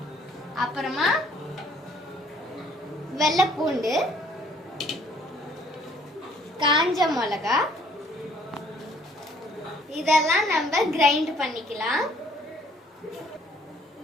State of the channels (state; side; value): normal; both; correlation 0.61